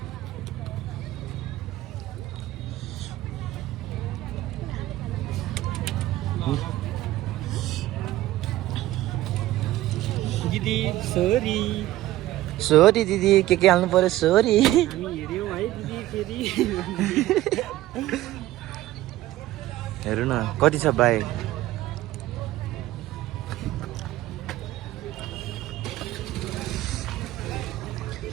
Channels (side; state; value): left; quieter; 15.6 dB